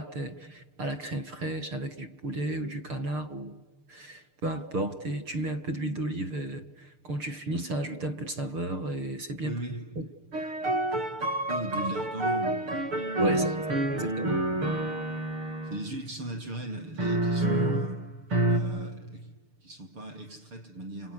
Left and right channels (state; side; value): late; left; 6.7 ms